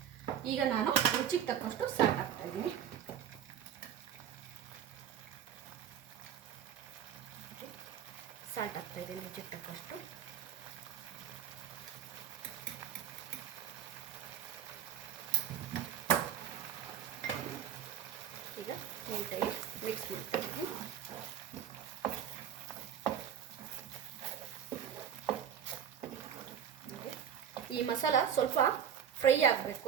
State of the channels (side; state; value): left; quieter; 9.1 dB